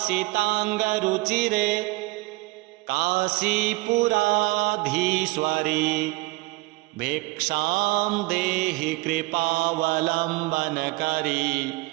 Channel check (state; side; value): quieter; left; 23.6 dB